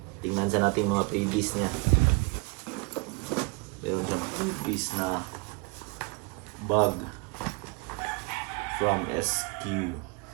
tingnan sa natin mga freebies niya. Meron siyang freebies na bag from SQ.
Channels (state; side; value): quieter; left; 31.0 dB